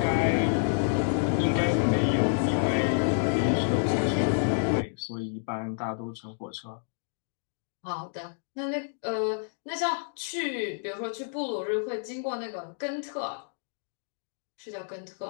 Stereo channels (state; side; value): silent; right; digital silence